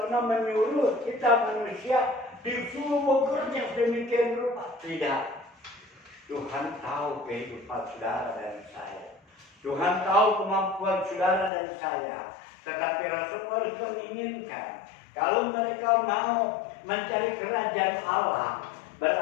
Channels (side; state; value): right; drops out; at 11.5 s